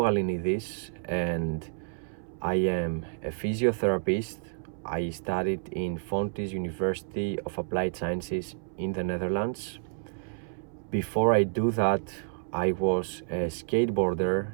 Galinidis and I am a physiotherapist. I studied in Fontys University of Applied Sciences in the Netherlands. Before I do that, I was a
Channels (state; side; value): silent; left; 58 dB below the other